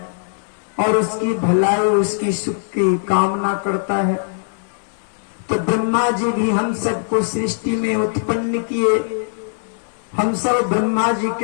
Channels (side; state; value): right; silent; digital silence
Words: और उसकी भलाई उसकी सुख की कामना करता है। तो ब्रह्मा जी भी हम सबको सृष्टि में उत्पन्न किए। हम सब ब्रह्मा जी